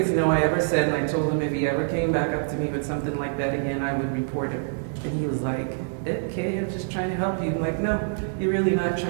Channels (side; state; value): left; silent; digital silence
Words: no I ever said, and I told him if he ever came back up to me with something like that again, I would report him. And he was like, okay, I'm just trying to help you. I'm like, no, you're really not